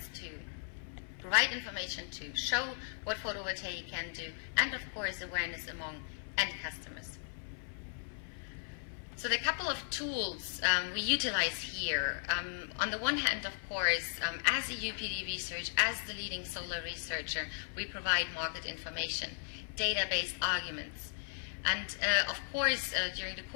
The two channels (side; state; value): right; silent; 53 dB below the other